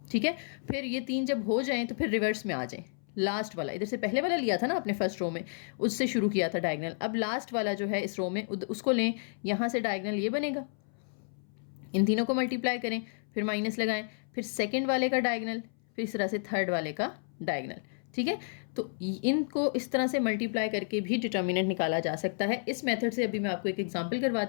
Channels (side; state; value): right; silent; 57 dB below the other